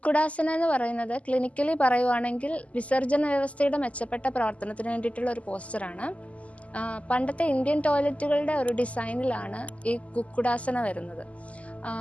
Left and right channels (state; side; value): late; right; 0.067 ms